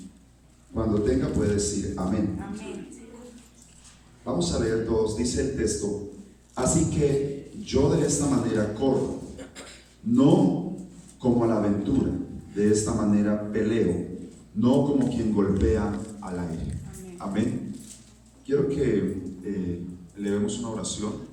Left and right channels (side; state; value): both; identical; correlation 1.00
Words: Cuando tenga puede decir amén. Amén. Vamos a leer todos. Dice el texto: así que yo de esta manera corro, no como a la aventura, de esta manera peleo, no como quien golpea al aire. Amén. Quiero que elevemos una oración